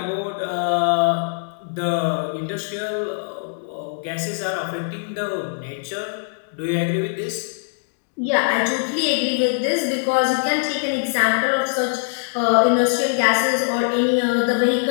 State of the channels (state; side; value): silent; right; digital silence